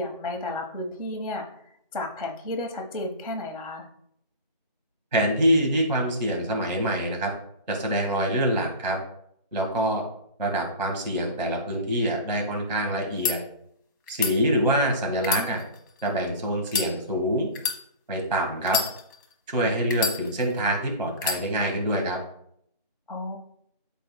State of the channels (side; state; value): both; inverted; correlation -0.31